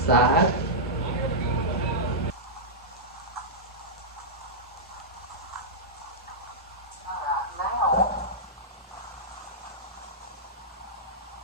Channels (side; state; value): both; normal; correlation -0.12